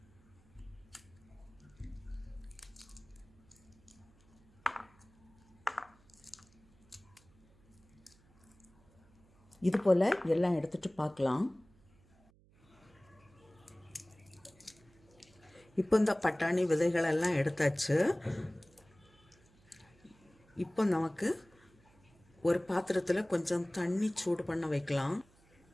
இது போல் எல்லாம் எடுத்துகிட்டு பார்க்கலாம். இப்போ இந்த பட்டாணி விதைகளெல்லாம் எடுத்தாச்சு. இப்போ நமக்கு ஒரு பாத்திரத்தில் கொஞ்சம் தண்ணி சூடு பண்ண வைக்கலாம்.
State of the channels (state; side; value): noise; right; hum, 29 dB below the sound